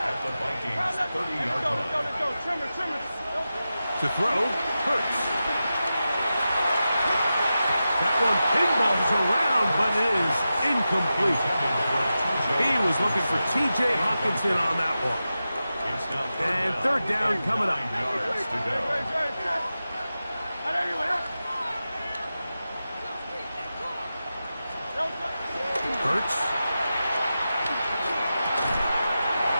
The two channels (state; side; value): inverted; both; correlation -0.92